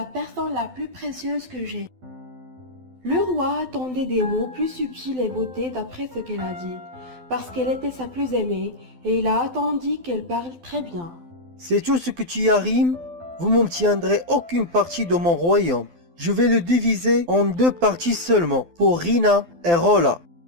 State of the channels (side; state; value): left; late; 12 ms